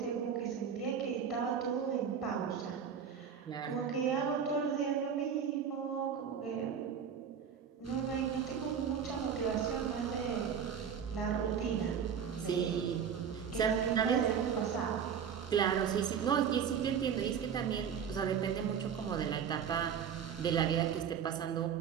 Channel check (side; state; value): left; quieter; 7.5 dB